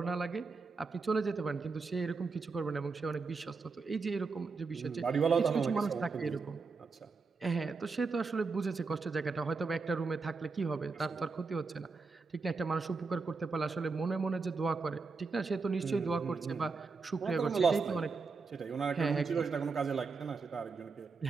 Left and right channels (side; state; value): left; quieter; 4.5 dB